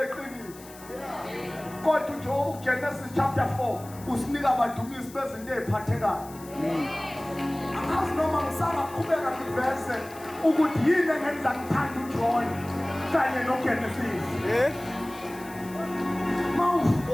Kodwa nje Genesis chapter 4 usinika abadumisi bezinto eziphathekayo. Angazi noma ngisaba qhubeka ngiveze ukuthi yini engenza ngithanda uJohn kanye noGenesis.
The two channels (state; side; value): noise; left; hiss, 19 dB below the sound